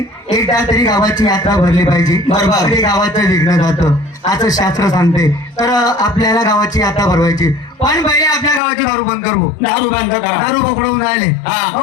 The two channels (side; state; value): right; drops out; at 8.6 s